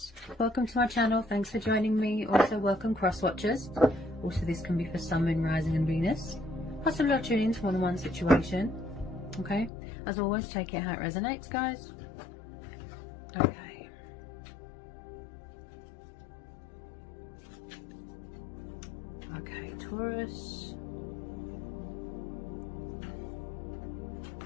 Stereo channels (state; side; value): drops out; right; at 9.7 s